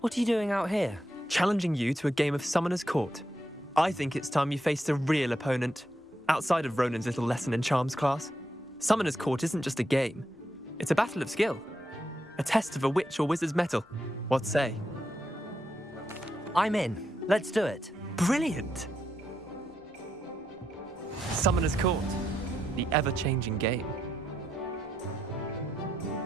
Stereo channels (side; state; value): both; normal; correlation 0.82